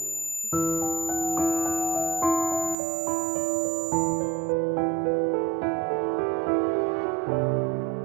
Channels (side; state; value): left; drops out; at 2.8 s